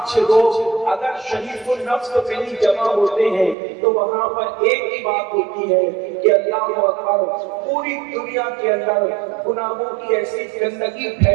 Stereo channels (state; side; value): drops out; left; at 3.6 s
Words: لوگ اگر شریف النفس پہ ہی جمع ہوتے ہیں تو وہاں پر ایک ہی بات ہوتی ہے کہ اللہ اکبر، پوری دنیا کے اندر گناہوں کی ایسی گندگی